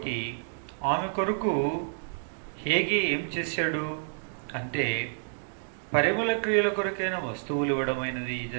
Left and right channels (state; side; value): silent; left; digital silence